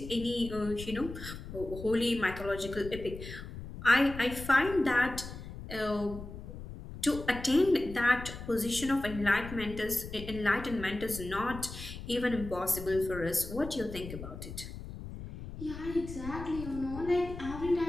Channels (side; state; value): left; noise; rumble, 11 dB below the sound